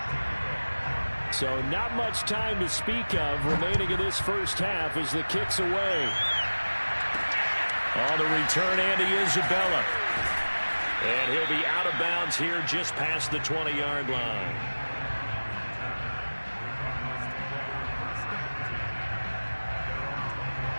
So not much time to speak of remaining in this first half as the kick's away. On the return, Andy Isabella. And he'll be out of bounds here just past the 20-yard line.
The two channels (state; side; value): inverted; both; correlation -1.00